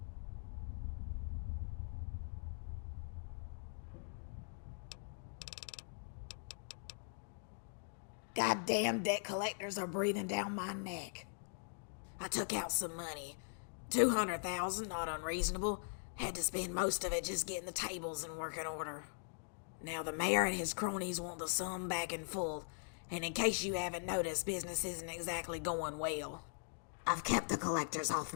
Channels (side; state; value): right; silent; digital silence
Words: Goddamn debt collectors are breathing down my neck. I took out some money. 200,000, not unreasonable. Had to spend most of it just getting the tables in working order. Now the mayor and his cronies want the sum back in full, and in case you haven't noticed, business isn't exactly going well. I've kept the collectors off